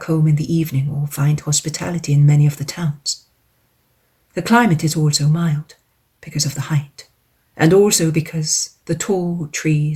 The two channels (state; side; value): identical; both; correlation 1.00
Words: home in the evening or find hospitality in many of the towns. The climate is also mild because of the height, and also because the tall